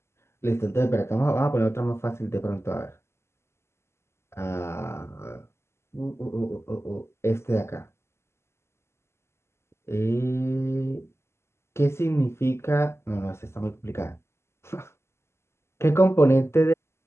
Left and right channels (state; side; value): late; right; 0.13 ms